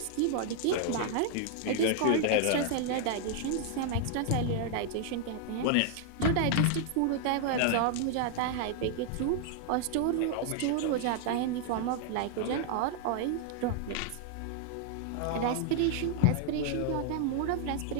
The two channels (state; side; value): different; both; correlation 0.00